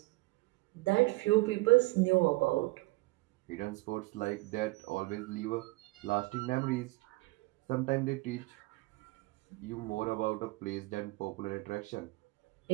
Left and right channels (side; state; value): left; quieter; 23.0 dB